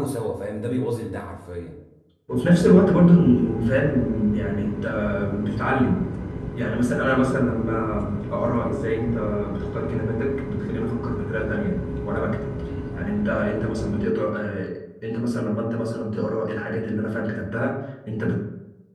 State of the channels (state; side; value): identical; both; correlation 1.00